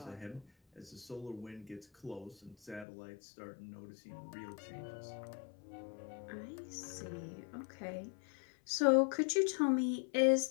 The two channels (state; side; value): drops out; right; at 2.9 s